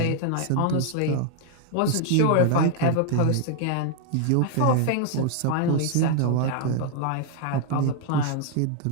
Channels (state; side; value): different; both; correlation 0.00